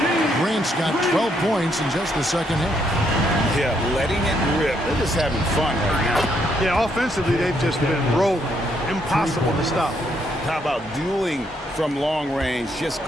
Grant's got 12 points in just the second half. Yeah, letting it rip. They're just having fun right now. Yeah, offensively, they've just been rolling. Impossible to stop. How about dueling from long range, just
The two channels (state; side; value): normal; both; correlation 0.74